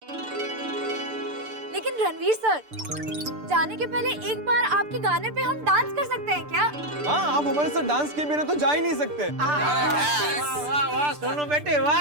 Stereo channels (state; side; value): late; left; 6.8 ms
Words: लेकिन रणवीर रणवीर सर, जाने के पहले एक बार आपके गाने पे हम डांस कर सकते हैं क्या? हाँ, आप हमारे साथ डांस के बिना तो जा ही नहीं सकते। वाह वाह सोनू बेटे